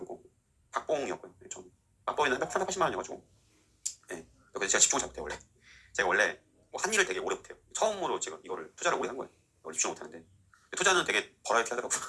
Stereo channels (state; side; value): identical; both; correlation 1.00